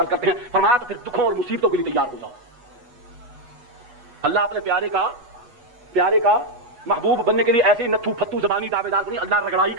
کرتے ہیں. فرمایا تو پھر دکھوں اور مصیبتوں کے لیے تیار ہو جاؤ. اللہ اپنے پیارے کا محبوب بننے کے لیے ایسے نتھو پھتو زبانی دعوے دار نہیں. اللہ رگڑائی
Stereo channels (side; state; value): left; late; 8.2 ms